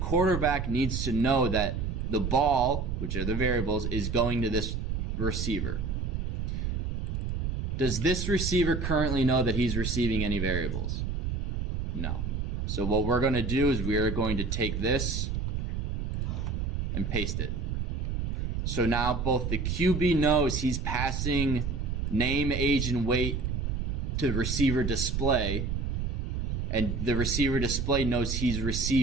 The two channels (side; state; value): right; noise; rumble, 1 dB below the sound